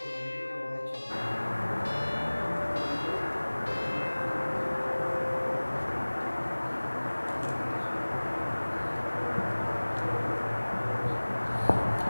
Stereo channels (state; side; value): inverted; both; correlation -1.00